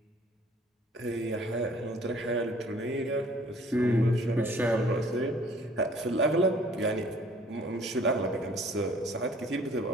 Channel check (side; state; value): both; normal; correlation 0.55